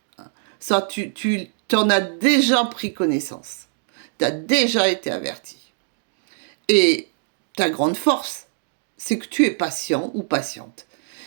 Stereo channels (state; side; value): silent; left; digital silence